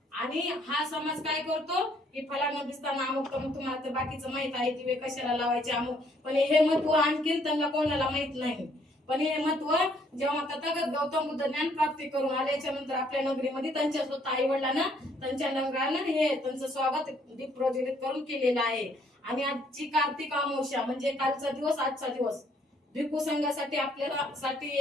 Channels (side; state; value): both; normal; correlation 0.66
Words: आणि हा समाज काय करतो की फलाना दिसताना अमुक तमुक, तुम्हाला तर बाकीचं माहित आहे दिवे कशाला लावायचे अमुक, पण हे महत्व आणखीन त्यांना कोणाला माहित नाही. पण हे महत्व जेव्हा तथागत गौतम बुद्ध ज्ञान प्राप्ती करून आल्याच्या नंतर आपल्या नगरीमध्ये त्यांच्या स्वतः आई वडिलांना त्यांच्या नगरानं हे त्यांचं स्वागत दीप प्रज्वलित करून केलेलं आहे. आणि आजची कार्तिक अमावस्या म्हणजे कालचा दिवस आजचा दिवस भिक्खू संघासाठी आपल्याला साठी